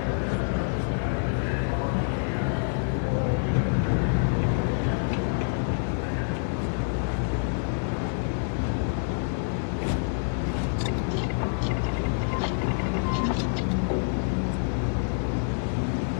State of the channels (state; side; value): silent; right; digital silence